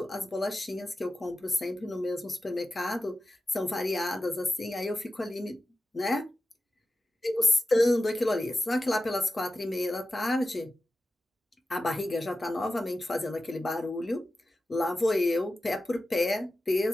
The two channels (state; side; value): normal; both; correlation 0.93